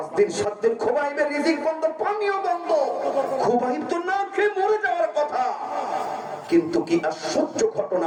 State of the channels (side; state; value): both; identical; correlation 1.00